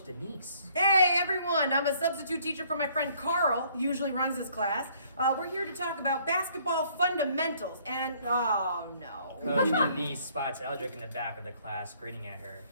Denise. Hey everyone, I'm a substitute teacher for my friend Carl, who usually runs this class. We're here to talk about basketball fundamentals and, oh no. Coach Denise spots Eldrick in the back of the class, grinning at her.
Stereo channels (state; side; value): inverted; both; correlation -0.62